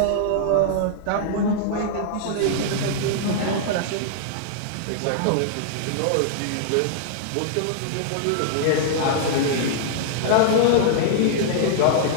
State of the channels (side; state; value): both; different; correlation -0.01